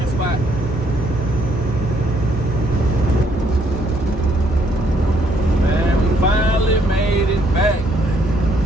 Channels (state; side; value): normal; both; correlation 0.69